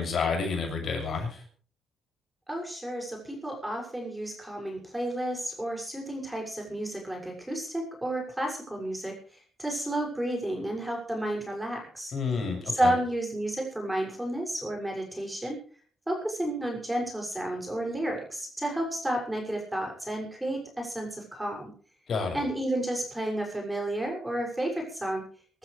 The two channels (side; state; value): both; normal; correlation 0.84